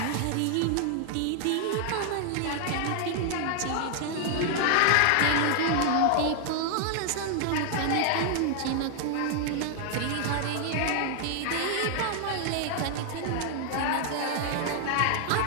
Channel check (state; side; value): different; both; correlation 0.00